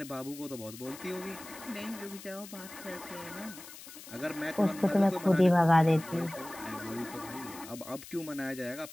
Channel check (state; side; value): noise; left; hiss, 15 dB below the sound